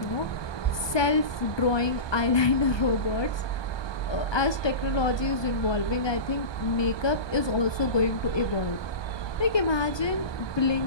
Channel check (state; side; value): late; right; 1.2 ms